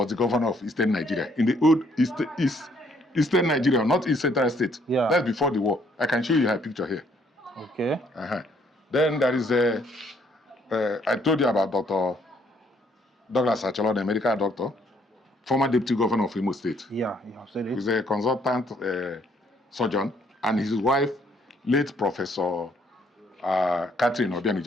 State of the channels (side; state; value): both; normal; correlation 0.67